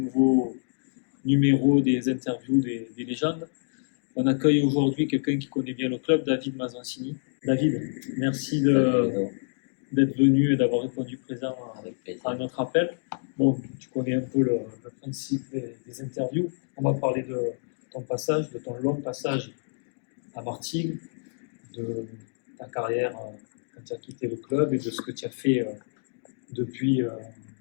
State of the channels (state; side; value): silent; right; digital silence